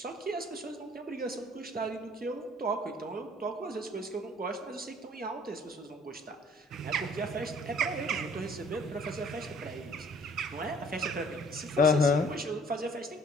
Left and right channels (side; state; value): both; normal; correlation 0.56